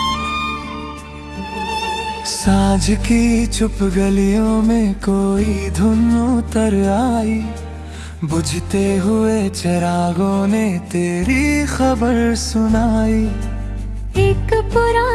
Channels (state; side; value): identical; both; correlation 1.00